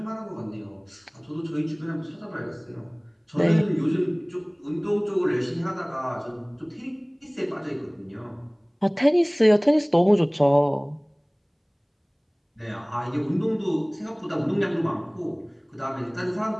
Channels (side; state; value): both; identical; correlation 1.00